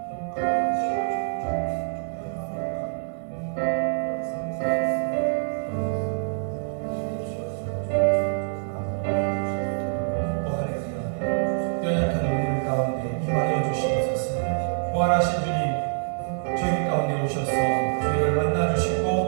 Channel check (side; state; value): left; silent; 61 dB below the other